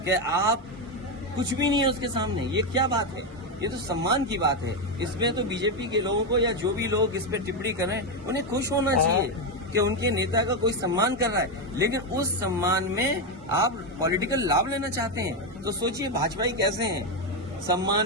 कि आप कुछ भी नहीं है उसके सामने, ये क्या बात है? ये तो सम्मान की बात है। इसमें तो बीजेपी के लोगों को या जो भी लोग इस पे टिप्पणी कर रहे हैं उन्हें खुश होना चाहिए कि उनके नेता का कोई सम्मान कर रहा है। लेकिन उस सम्मान में आप पॉलिटिकल लाभ लेना चाहते हैं तो सोचिए भाजपाई कैसे हैं।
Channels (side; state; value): both; normal; correlation 0.07